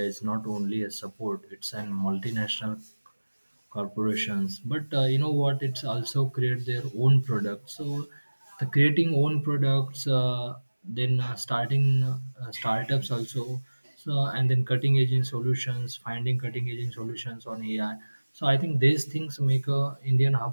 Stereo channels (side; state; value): both; inverted; correlation -1.00